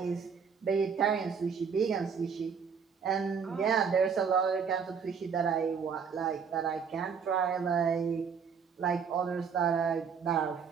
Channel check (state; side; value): quieter; left; 6.4 dB